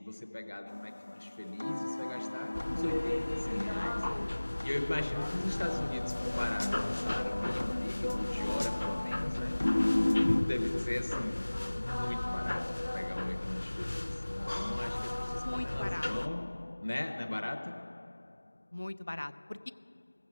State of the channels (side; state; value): both; inverted; correlation -1.00